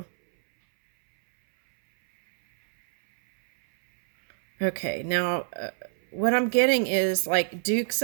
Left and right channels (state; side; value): silent; left; 62 dB below the other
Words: Okay, now what I'm getting is like Dukes